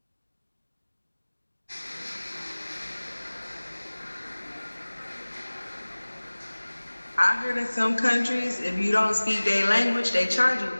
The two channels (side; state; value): both; inverted; correlation -1.00